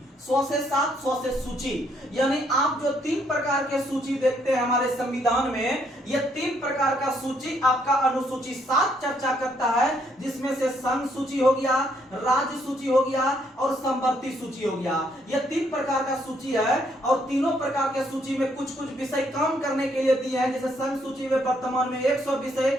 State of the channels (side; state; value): both; normal; correlation 0.71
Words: 100 से 7 100 से सूची, यानी आप जो 3 प्रकार के सूची देखते हैं हमारे संविधान में, ये 3 प्रकार का सूची आपका अनुसूची 7 चर्चा करता है, जिसमें से संघ सूची हो गया, राज्य सूची हो गया और संवर्ती सूची हो गया। ये 3 प्रकार का सूची है, और तीनों प्रकार के सूची में कुछ कुछ विषय काम करने के लिए दिए हैं। जैसे संघ सूची में वर्तमान में 100 विषय,